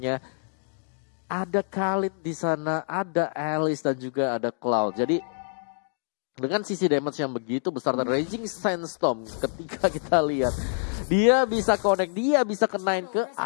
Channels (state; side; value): silent; right; 61 dB below the other